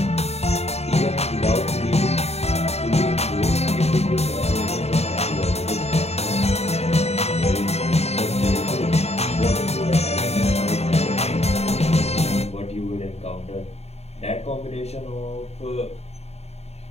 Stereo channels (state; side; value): late; right; 0.31 ms